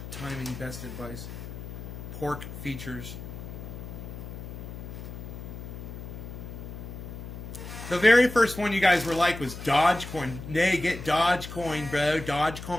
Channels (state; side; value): noise; left; hum, 10 dB below the sound